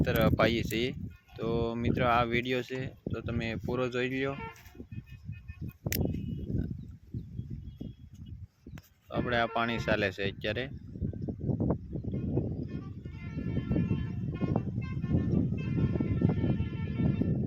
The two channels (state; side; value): identical; both; correlation 1.00